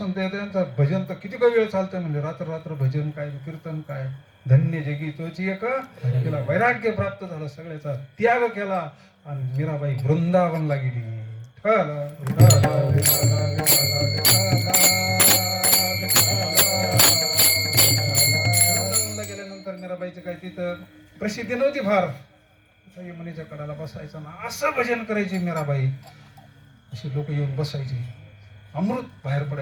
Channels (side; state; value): both; identical; correlation 1.00